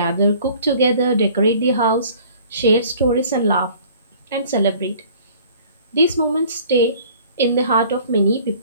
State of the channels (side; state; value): both; inverted; correlation -0.51